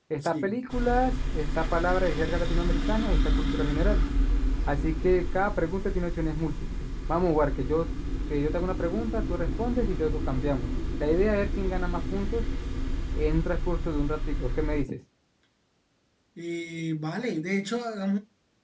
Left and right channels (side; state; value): both; identical; correlation 1.00